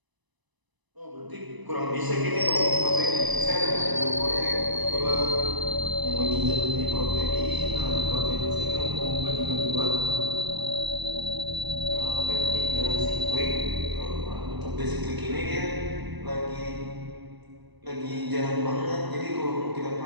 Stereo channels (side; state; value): left; late; 1.0 ms